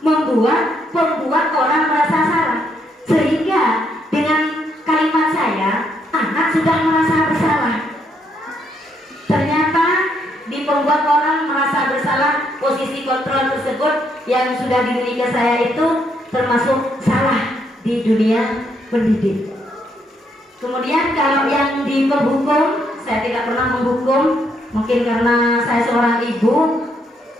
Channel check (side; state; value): both; normal; correlation 0.74